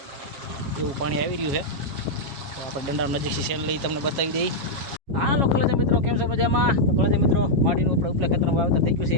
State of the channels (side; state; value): left; late; 7.3 ms